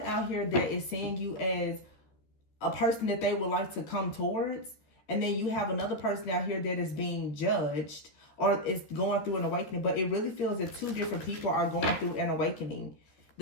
out here that is seeing you as a person that they would like to come towards. And then you have another person out here that is being judged or is going through an awakening. But it really feels that two different people are going through an awakening.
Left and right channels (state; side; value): late; right; 13 ms